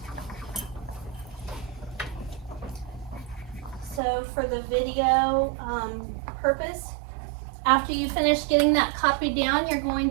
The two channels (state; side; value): drops out; left; at 4.0 s